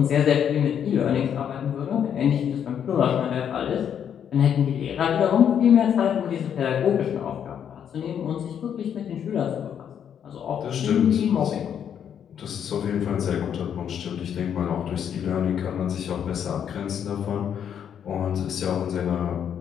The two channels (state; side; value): quieter; right; 8.7 dB